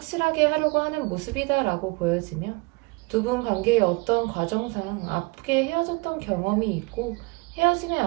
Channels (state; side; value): quieter; left; 27.0 dB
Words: 하려고 하는 모습이다라고 보여지며 두 분 관계의 어떤 과정상 아프게 헤어졌던 경험이 있고 헤어짐의